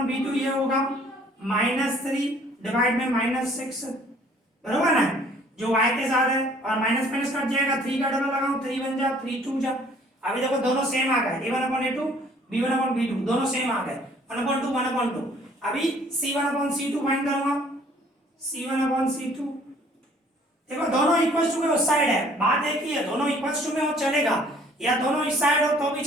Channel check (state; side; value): normal; both; correlation 0.57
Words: b2 ये होगा -3 डिवाइड में -6, बरोबर ना, जो y के साथ है और माइनस माइनस कट जाएगा, 3 का डबल लगाओ 3 1 जा 3 2 जा। अभी देखो दोनों सेम आ गए, a1 upon a2 b1 upon b2 दोनों सेम आ गए, 1 अपॉन 2 1 अपॉन 2। अभी c1 अपॉन c2 फाइंड करूंगा, c1 अपॉन c2, देखो दोनों इक्वल टू के उस साइड है, बात एक ही है, दोनों इक्वल टू में हो चलेगा या दोनों इस साइड हो तो भी